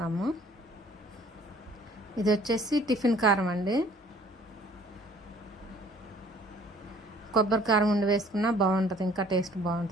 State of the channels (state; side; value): normal; both; correlation 0.55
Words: ఇది వచ్చేసి టిఫిన్ కారం అండి. కొబ్బరి కారం ఉండి వేసుకున్నా బాగుంటుంది, ఇంకా టేస్ట్